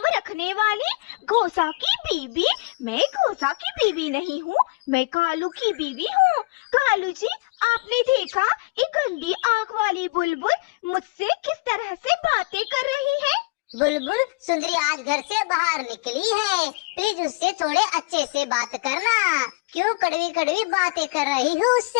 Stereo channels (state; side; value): quieter; right; 26.3 dB